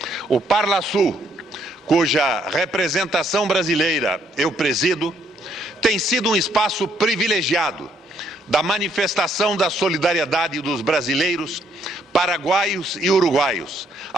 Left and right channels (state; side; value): normal; both; correlation 0.70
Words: O Parlasul, cuja representação brasileira eu presido, tem sido um espaço privilegiado da manifestação da solidariedade dos brasileiros, paraguaios e uruguaios